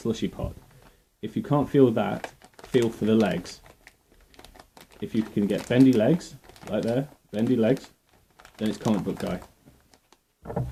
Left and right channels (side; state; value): both; identical; correlation 1.00